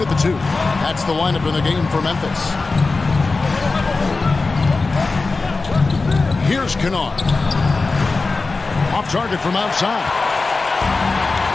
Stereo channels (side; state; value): right; quieter; 3.8 dB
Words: the 2. That's the lineup in the game for Memphis. Here's Kennard. Off target from outside.